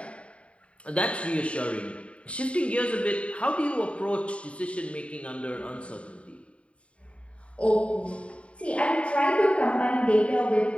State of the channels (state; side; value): late; right; 0.061 ms